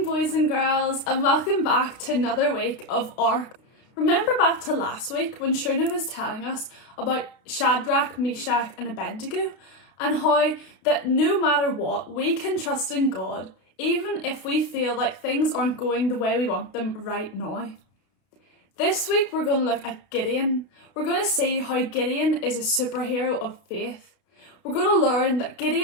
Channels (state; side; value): late; right; 32 ms